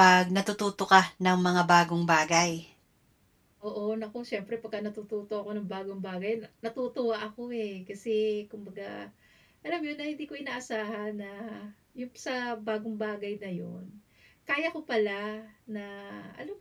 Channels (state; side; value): identical; both; correlation 1.00